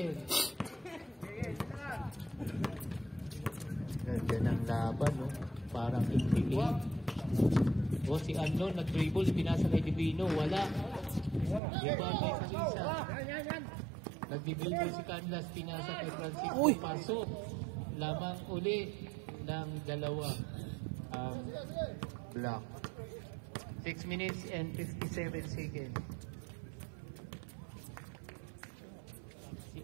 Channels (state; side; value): drops out; left; at 11.6 s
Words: Ganda ng laban, no? Parang tigtigil. O si Unknown nag-dribble, pinasa kay Divino, wala. Diba kay Salisa. Nag-dribble si Canlas, pinasa kay Francisco, pasok. Lamang uli ng dalawa ang block. 6 minutes and 57 seconds. Si